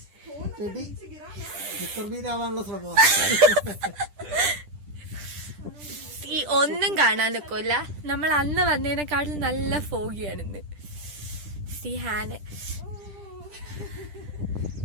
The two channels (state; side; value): late; left; 10 ms